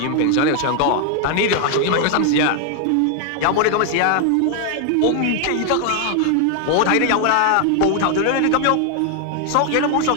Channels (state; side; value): different; both; correlation 0.00